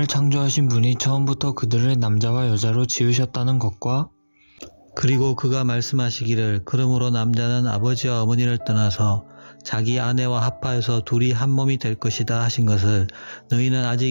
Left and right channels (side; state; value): both; inverted; correlation -1.00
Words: 창조하신 분이 처음부터 그들을 남자와 여자로 지으셨다는 것과 그리고 그가 말씀하시기를 그러므로 남자는 아버지와 어머니를 떠나서 자기 아내와 합하여서 둘이 한 몸이 될 것이다 하신 것을 너희는